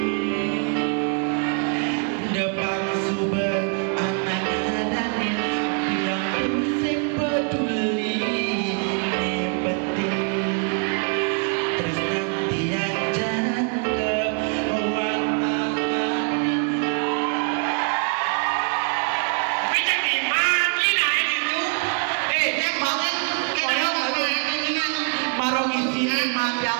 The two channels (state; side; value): quieter; left; 39.9 dB